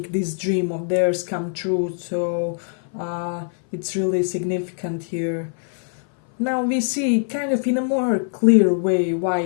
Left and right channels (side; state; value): right; silent; 58 dB below the other